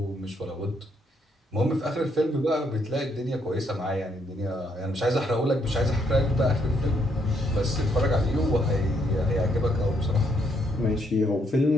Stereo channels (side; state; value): both; normal; correlation 0.73